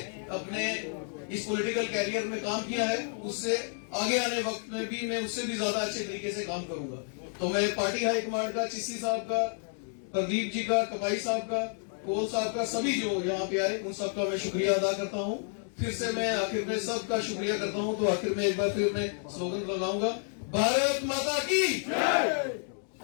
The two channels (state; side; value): silent; right; 58 dB below the other